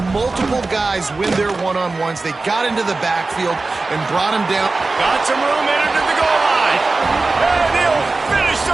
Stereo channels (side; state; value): left; quieter; 3.5 dB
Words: multiple guys win their one-on-ones. They got into the backfield and brought him down. Got some room in into the goal line. And he'll finish